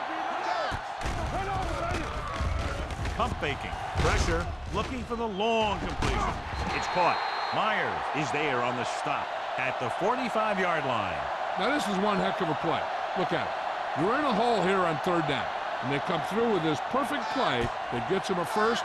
B. Let's go. Run over, baby. Pump faking. Pressure. Looking for the long completion. It's caught. Myers is there on the stop at the 45-yard line. Now this is one heck of a play. Look at it. You're in a hole here on third down, and they come through with this perfect play that gets them a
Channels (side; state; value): both; identical; correlation 1.00